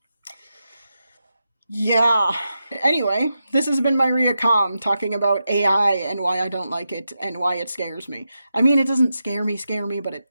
yeah. Anyway, this has been Myria Calm talking about AI and why I don't like it and why it scares me. I mean, it doesn't scare me, but it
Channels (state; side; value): inverted; both; correlation -0.88